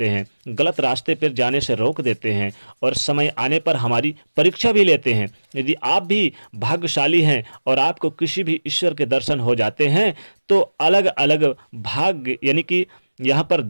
हैं, गलत रास्ते पर जाने से रोक देते हैं और समय आने पर हमारी परीक्षा भी लेते हैं। यदि आप भी भाग्यशाली हैं और आपको किसी भी ईश्वर के दर्शन हो जाते हैं, तो अलग अलग भाग्य यानी कि यहाँ पर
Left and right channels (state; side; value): inverted; both; correlation -1.00